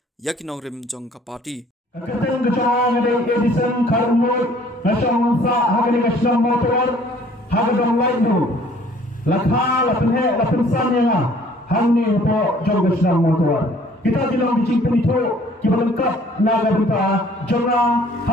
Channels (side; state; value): both; normal; correlation 0.56